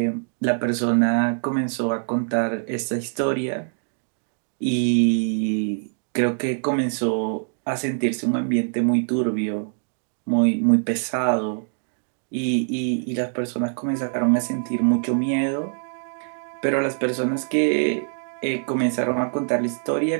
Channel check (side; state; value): left; silent; digital silence